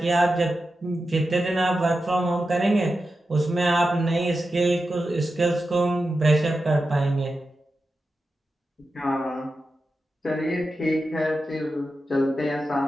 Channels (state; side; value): normal; both; correlation 0.90